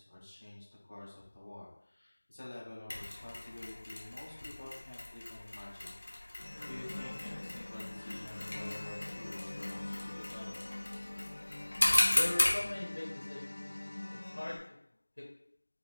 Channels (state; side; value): inverted; both; correlation -1.00